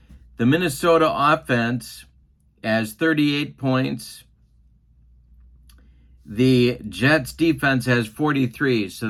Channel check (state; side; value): identical; both; correlation 1.00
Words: The Minnesota offense has 38 points. The Jets defense has 43, so